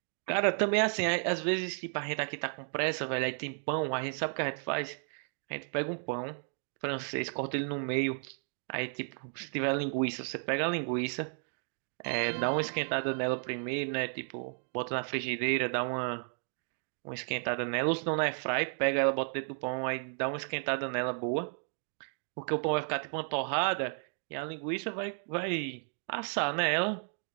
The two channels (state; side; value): silent; left; 56 dB below the other